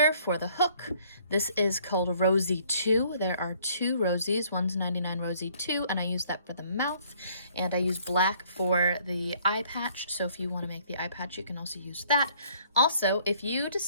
for the hook. This is called Rosey 2. There are 2 Rosies. One's 99 Rosey 2, and I use that for the mouth. And I use black for the eye patch. So if you want to make the eye patch, you can also use that. Also, if you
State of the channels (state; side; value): inverted; both; correlation -0.61